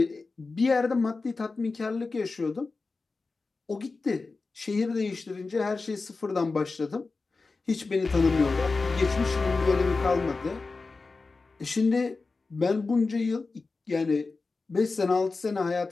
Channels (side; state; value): right; quieter; 3.9 dB